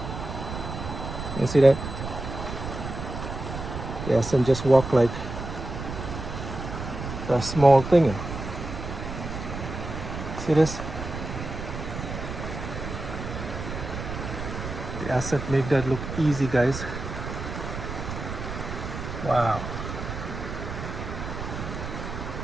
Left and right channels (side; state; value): right; noise; rumble, 7 dB below the sound